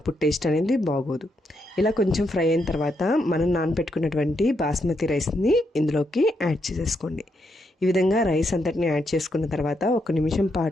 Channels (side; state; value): both; normal; correlation 0.80